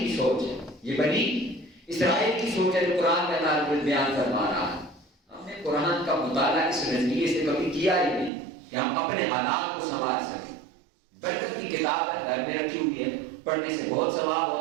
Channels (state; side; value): drops out; left; at 8.3 s